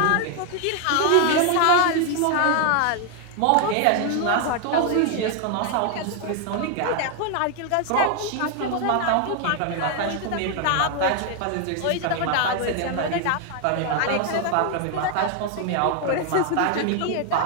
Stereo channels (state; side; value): different; both; correlation 0.00